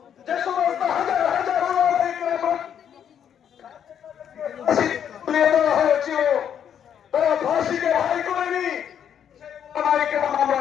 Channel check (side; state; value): right; quieter; 8.9 dB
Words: যে সমস্ত হাজার হাজার হয়েছিল তারা ফাঁসিকে ভাই করেনি,